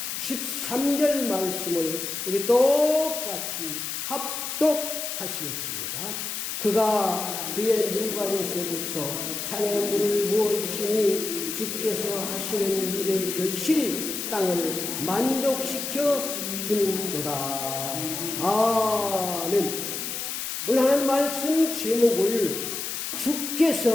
13절 말씀을 우리 똑같이 합독하시겠습니다. 그가 그의 누각에서부터 산에 물을 부어주시니 주께서 하시는 일의 결실이 땅을 만족시켜 주는도다. 아멘. 오늘 하나님 말씀 제목을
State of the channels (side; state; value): left; noise; hiss, 4 dB below the sound